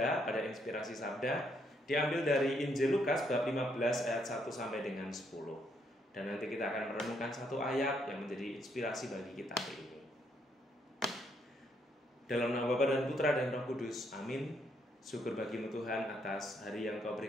pada Inspirasi Sabda, diambil dari Injil Lukas bab 15 ayat 1 sampai dengan 10. Dan nanti kita akan merenungkan satu ayat yang menjadi inspirasi bagi kita hari ini. Dalam nama Bapa dan Putra dan Roh Kudus, amin. Syukur bagimu Tuhan atas hari yang Kau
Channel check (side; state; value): both; normal; correlation 0.73